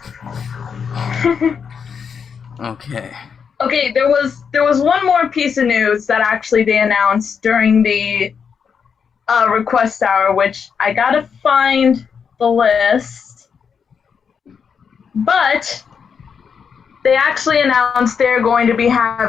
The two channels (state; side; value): quieter; right; 6.5 dB